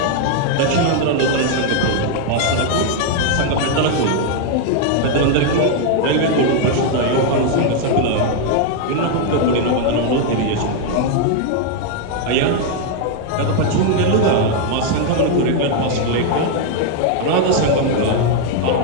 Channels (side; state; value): both; different; correlation 0.00